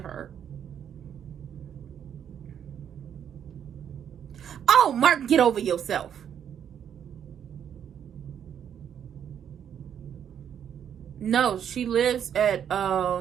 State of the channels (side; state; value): left; quieter; 8.8 dB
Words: Oh, Mark, get over yourself. No, she lives at